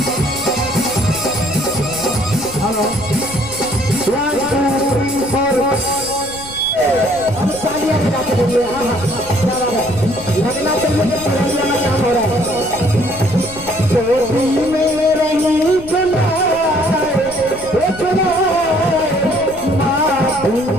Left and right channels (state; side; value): noise; left; rumble, 17 dB below the sound